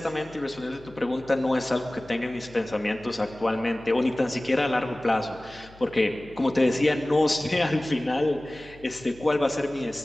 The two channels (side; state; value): left; noise; hum, 23 dB below the sound